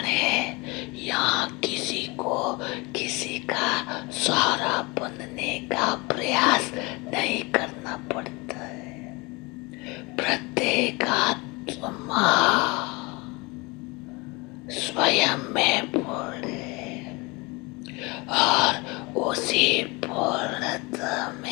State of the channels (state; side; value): quieter; right; 26.0 dB